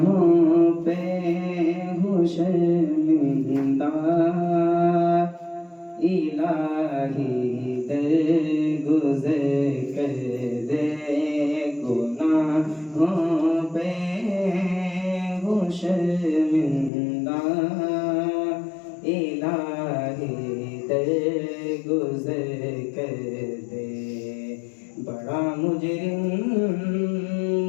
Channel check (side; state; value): right; drops out; at 16.9 s